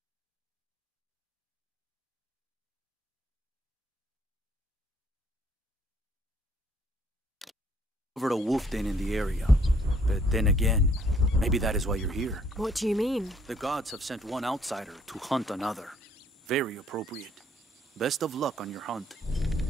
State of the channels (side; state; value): both; normal; correlation 0.63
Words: over a wolf den in the area. But then again, maybe that is why you're here. What do you mean? The gods have sent one outsider to hunt another. Very appropriate. Best of luck on your hunt.